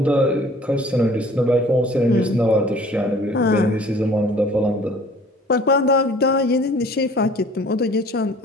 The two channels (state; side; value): normal; both; correlation 0.51